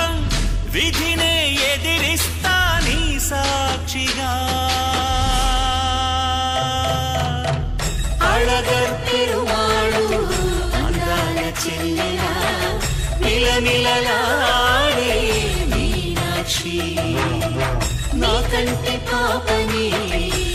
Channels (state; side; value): identical; both; correlation 1.00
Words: విధినే ఎదిరిస్తా నీ సాక్షిగా. అళగర్ పెరుమాళు అందాల చెల్లెలా మిలమిలలాడే మీనాక్షి, నీ కంటి పాపని